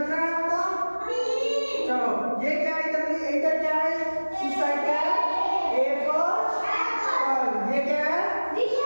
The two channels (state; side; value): inverted; both; correlation -1.00